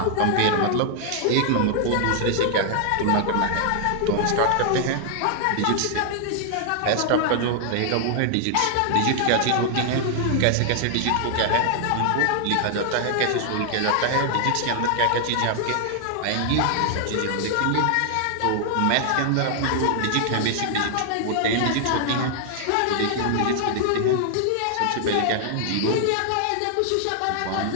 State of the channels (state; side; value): different; both; correlation 0.00